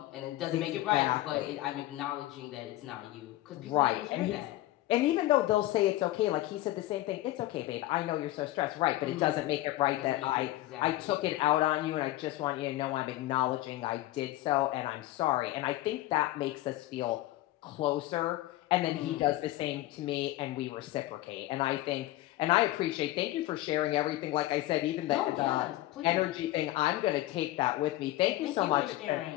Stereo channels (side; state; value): right; quieter; 16.3 dB